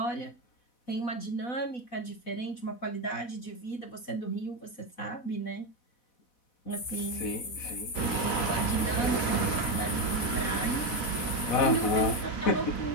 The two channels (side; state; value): right; late; 4.1 ms